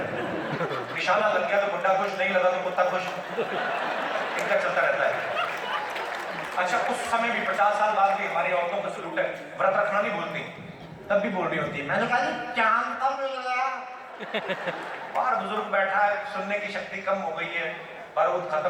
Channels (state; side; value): identical; both; correlation 1.00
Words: निशाना लग गया तो बुड्ढा खुश, नहीं लगा तो कुत्ता खुश, इनका चलता रहता है। अच्छा, उस समय भी 50 साल बाद भी हमारी औरतों का सलूट है, व्रत रखना नहीं भूलती, तब भी बोल रही होती है, मैंने कहा चांद कब मिल गया? बाहर बुजुर्ग बैठा है, सुनने की शक्ति कम हो गई है, बारूद